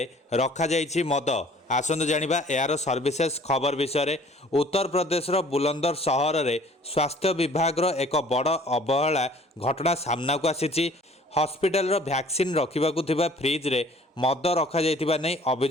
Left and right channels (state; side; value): normal; both; correlation 0.53